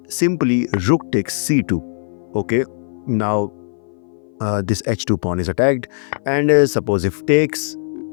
simply rook takes c2. Okay, now this h2 pawn is attacked, and suppose if takes,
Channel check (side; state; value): right; silent; 59 dB below the other